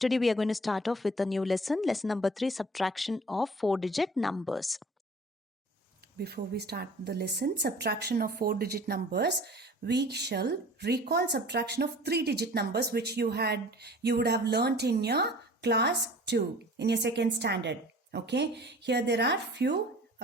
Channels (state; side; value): normal; both; correlation 0.46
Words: we are going to start off with a new lesson number 3, subtraction of 4-digit numbers. Before we start the lesson, subtraction of 4-digit numbers, we shall recall subtraction of 3-digit numbers which you would have learnt in your class 2, in your second standard. Okay, here there are few